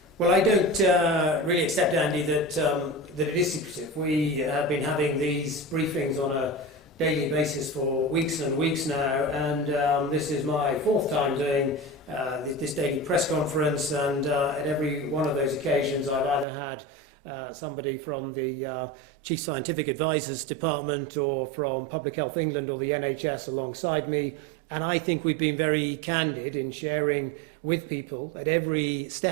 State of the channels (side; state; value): left; drops out; at 16.4 s